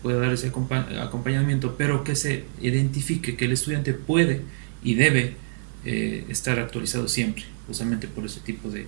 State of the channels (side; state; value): left; silent; digital silence